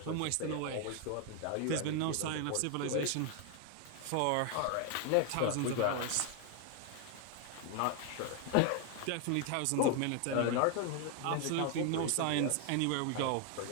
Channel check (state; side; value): different; both; correlation 0.00